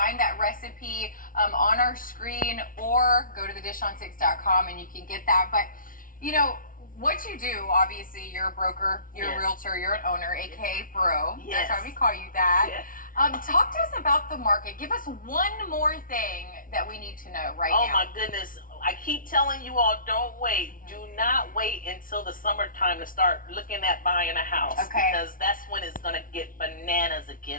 that recipe on our screen or go to thedishon6.com and you can get that. But you know what you do, obviously you're a broker, you're a realtor, you're an owner, aka bro. Yes. That's why we call you that. Yes. Talk to us about the market. Give us one more thing that we need to know right now. Oh my goodness. I keep telling you all, don't wait. Do not wait until the summertime to start looking at buying a house. Okay. Because that's when it's going to get bananas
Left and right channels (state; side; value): late; right; 0.40 ms